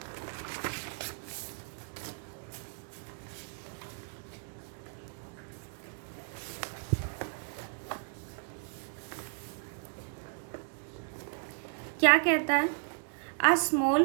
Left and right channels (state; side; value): silent; left; 55 dB below the other